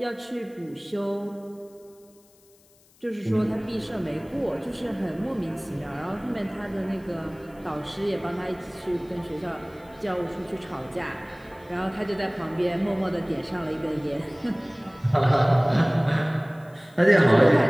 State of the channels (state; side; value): noise; left; hiss, 30 dB below the sound